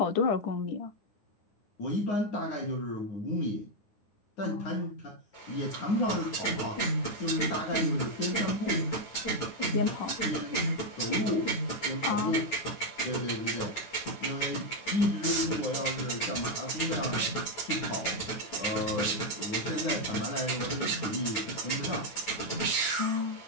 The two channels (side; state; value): right; late; 9.2 ms